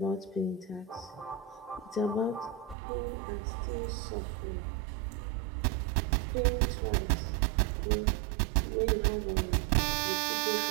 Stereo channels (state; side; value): drops out; left; at 2.8 s